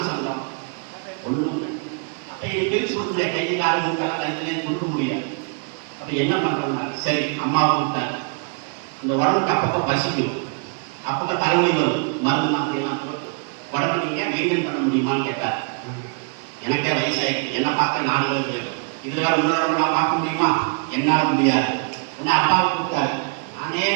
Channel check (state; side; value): quieter; left; 39.9 dB